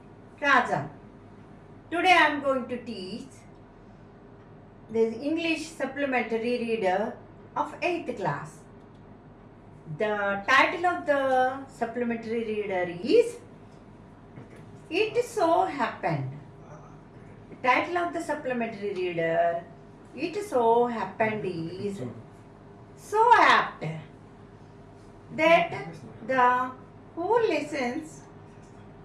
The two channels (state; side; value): identical; both; correlation 1.00